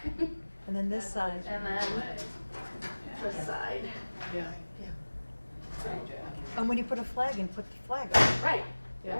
And then this side. And then this side. Yeah. And when you put a flag in, put the flag up. Right.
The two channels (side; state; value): both; inverted; correlation -1.00